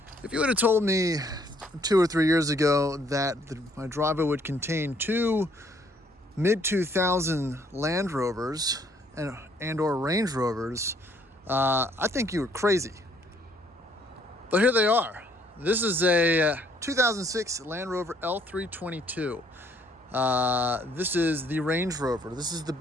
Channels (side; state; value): both; normal; correlation 0.65